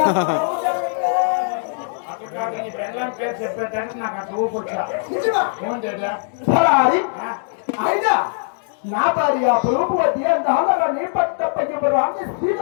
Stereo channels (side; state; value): right; silent; 65 dB below the other